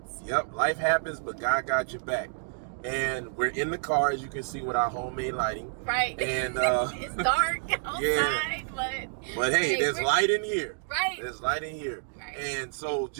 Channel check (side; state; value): left; silent; digital silence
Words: Yep, life happens, but God got your back. And we're in the car, as you can see, with our homemade lighting. Right. And it's dark outside, but hey, there's light in here. Right. There's light in here. Right. And so,